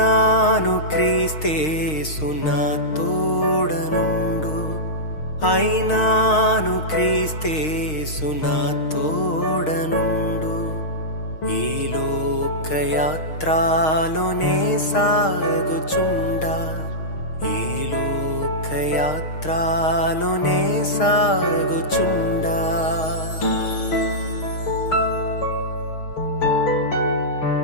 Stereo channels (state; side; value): late; right; 6.5 ms